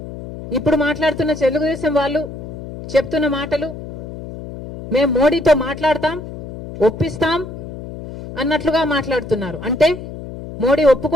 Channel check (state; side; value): noise; left; hum, 11 dB below the sound